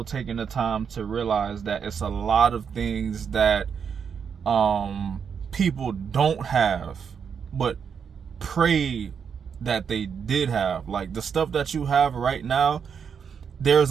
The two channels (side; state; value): left; quieter; 6.9 dB